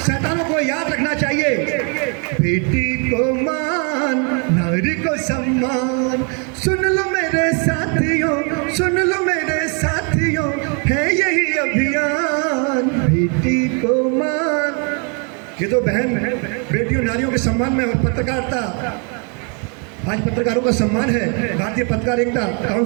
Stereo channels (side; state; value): left; quieter; 37.3 dB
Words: को याद रखना चाहिए। बेटी को मान, नारी को सम्मान। सुन लो मेरे साथियों, सुन लो मेरे साथियों, है यही अभियान। बेटी को मान। ये तो बहन बेटियों नारियों के सम्मान में और पत्रकारिता, आज पत्रकारों का सम्मान है भारतीय पत्रकार एकता